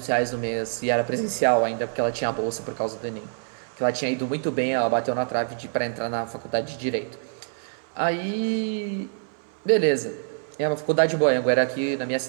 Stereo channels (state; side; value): silent; left; 61 dB below the other